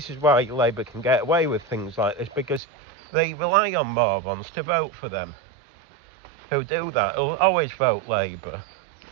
is why Labour can get away with things like this, because they rely on morons to vote for them. Who do that, who'll always vote Labour.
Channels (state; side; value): drops out; left; at 2.6 s